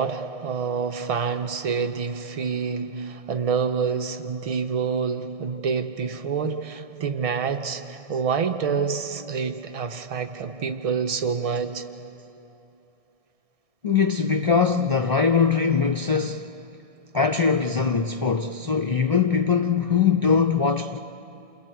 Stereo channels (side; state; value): left; late; 1.6 ms